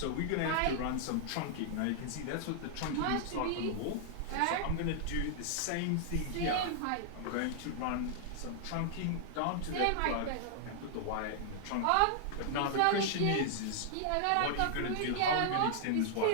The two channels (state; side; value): different; both; correlation -0.01